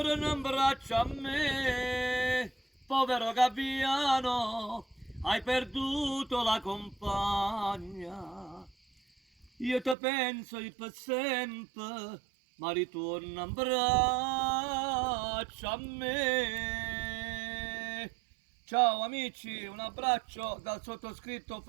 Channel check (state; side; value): drops out; left; at 10.0 s